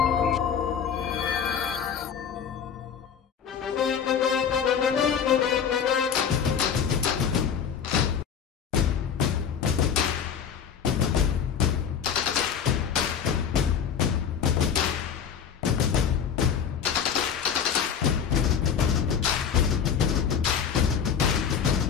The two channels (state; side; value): quieter; right; 7.6 dB